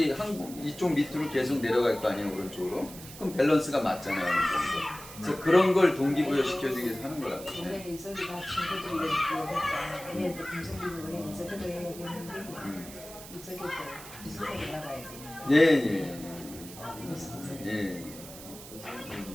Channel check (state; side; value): noise; right; hiss, 15 dB below the sound